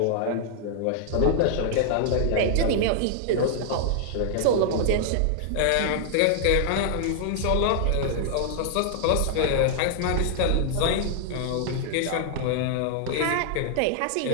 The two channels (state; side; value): different; both; correlation -0.01